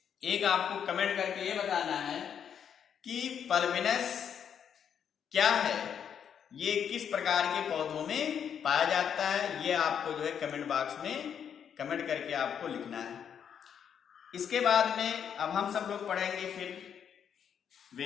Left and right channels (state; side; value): quieter; right; 8.1 dB